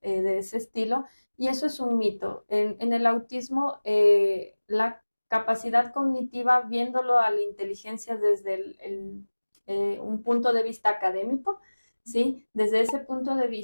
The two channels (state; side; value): inverted; both; correlation -1.00